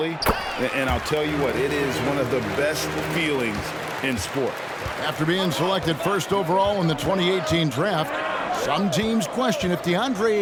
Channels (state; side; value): identical; both; correlation 1.00